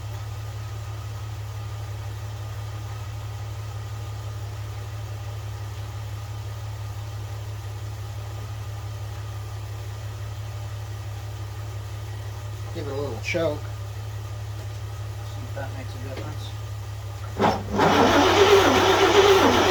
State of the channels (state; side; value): identical; both; correlation 1.00